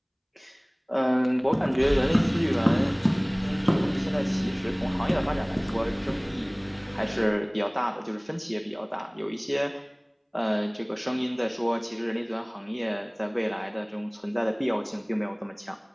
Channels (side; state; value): both; identical; correlation 1.00